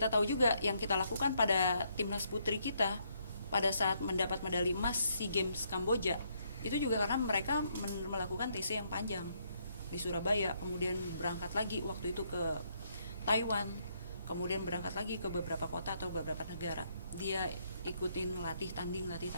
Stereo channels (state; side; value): inverted; both; correlation -0.73